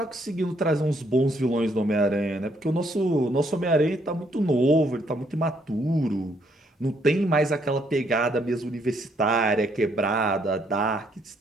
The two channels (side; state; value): both; normal; correlation 0.70